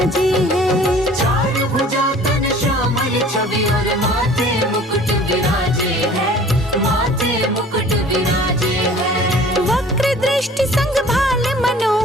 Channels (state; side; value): normal; both; correlation 0.48